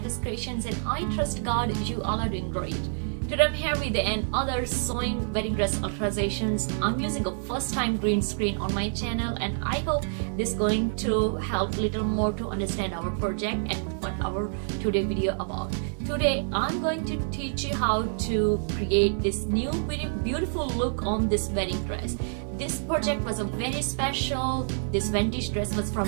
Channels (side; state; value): left; silent; digital silence